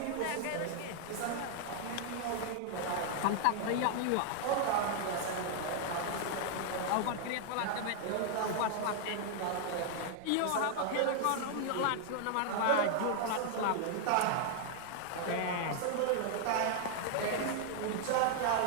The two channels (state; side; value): different; both; correlation 0.00